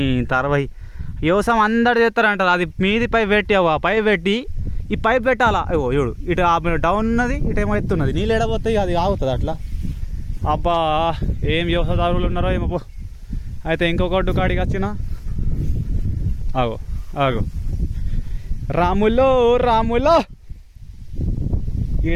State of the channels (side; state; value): both; identical; correlation 1.00